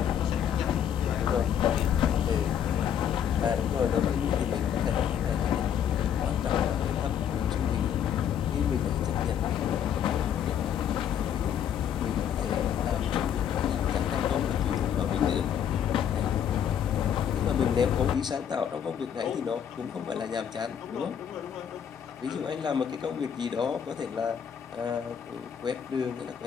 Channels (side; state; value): right; quieter; 8.9 dB